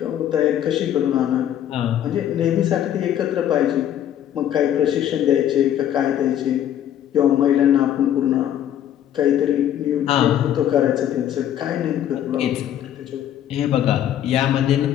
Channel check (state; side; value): quieter; right; 10.8 dB